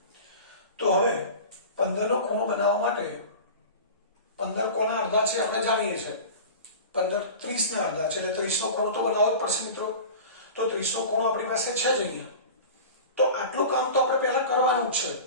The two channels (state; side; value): inverted; both; correlation -0.34